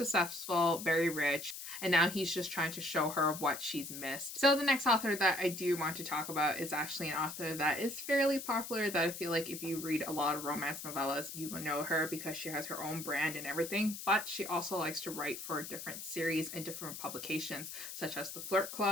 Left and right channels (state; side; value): noise; left; hiss, 9 dB below the sound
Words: very rich, and now he's just trying to show her what she's missed. So the next author that I do want to talk about is actually an author that is fairly popular, that I feel like if you read a lot of romance novellas, you will know her because she has her own brand and everything, but she also likes to write for different series and different publications, such as the Flirt